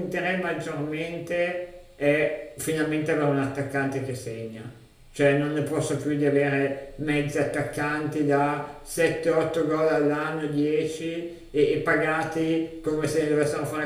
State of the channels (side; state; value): both; identical; correlation 1.00